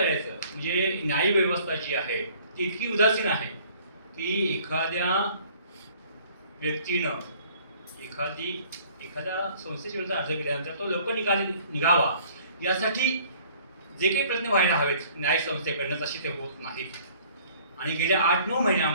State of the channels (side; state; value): both; inverted; correlation -0.55